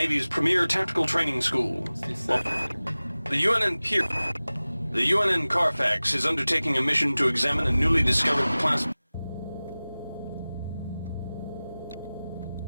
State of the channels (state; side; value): inverted; both; correlation -0.98